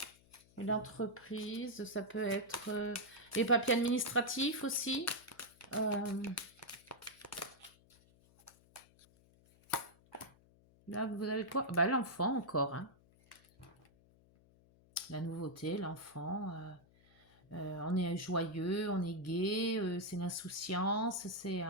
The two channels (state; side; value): noise; left; hum, 28 dB below the sound